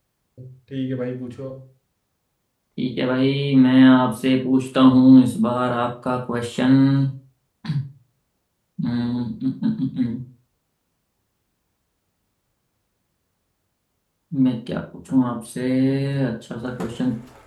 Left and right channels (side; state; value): both; identical; correlation 1.00